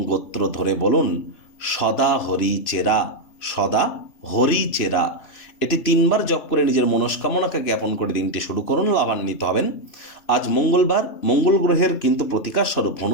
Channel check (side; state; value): right; late; 2.6 ms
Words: গোত্র ধরে বলুন সদা হরি চেরা, সদা হরি চেরা। এটি 3বার জপ করে নিজের মনস্কামনাকে জ্ঞাপন করে দিনটি শুরু করুন, লাভান্বিত হবেন। আজ মঙ্গলবার, মঙ্গল গ্রহের কিন্তু প্রতিকার স্বরূপ